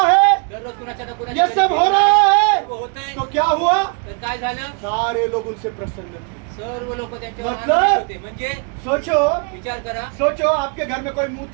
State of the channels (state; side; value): quieter; left; 36.3 dB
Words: है, दररोज कुणाच्या ना ये कुणाच्या सब हो रहा है, होतंय. तो क्या हुआ? तर काय झालं? सारे लोग उनसे प्रसन्न थे। सर्व लोक त्यांच्यावर मतलब? आनंदित होते. म्हणजे सोचो विचार करा, सोचो आपके घर में कोई मुंह